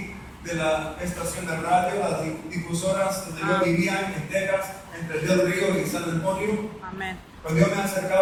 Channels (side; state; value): both; identical; correlation 1.00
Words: de la estación de radio, las difusoras donde yo vivía en Texas, entre Del Río y San Antonio. Amén. Cuando yo me